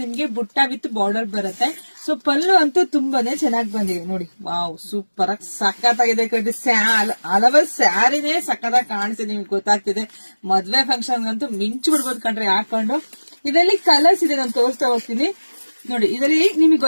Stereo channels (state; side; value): inverted; both; correlation -1.00